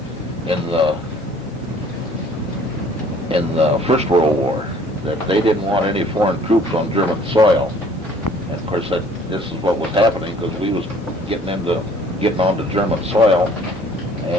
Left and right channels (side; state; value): both; normal; correlation 0.55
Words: the First World War that they didn't want any foreign troops on German soil. And of course, this is what was happening, because we was getting onto German soil,